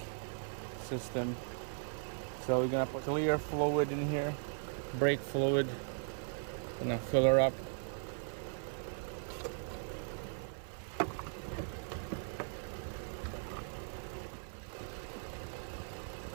system. So we're gonna put clear fluid in here, brake fluid. Gonna fill her up.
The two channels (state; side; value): silent; left; 52 dB below the other